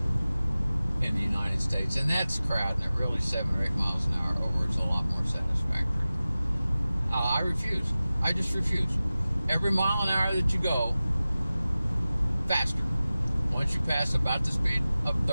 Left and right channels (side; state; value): both; inverted; correlation -0.96